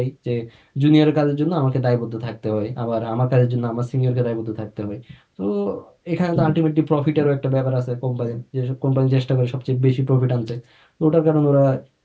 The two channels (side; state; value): both; identical; correlation 1.00